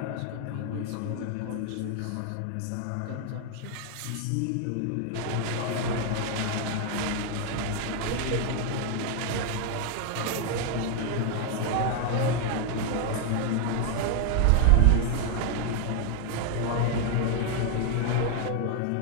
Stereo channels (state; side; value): different; both; correlation 0.01